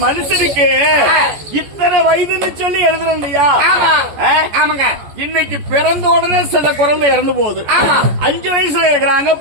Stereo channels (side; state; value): left; late; 14 ms